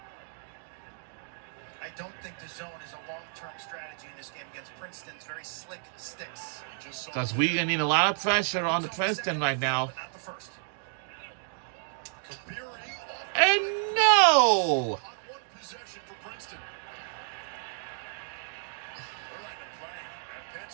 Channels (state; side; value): silent; left; 57 dB below the other